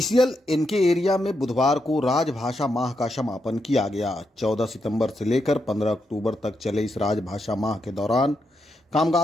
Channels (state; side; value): normal; both; correlation 0.83